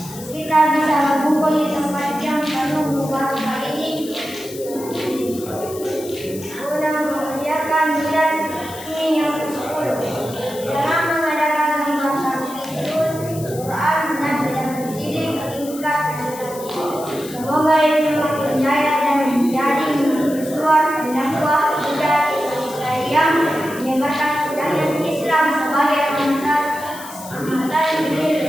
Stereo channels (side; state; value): left; noise; hiss, 15 dB below the sound